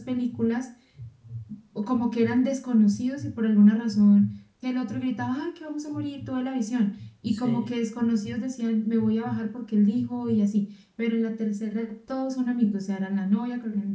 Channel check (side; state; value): both; identical; correlation 1.00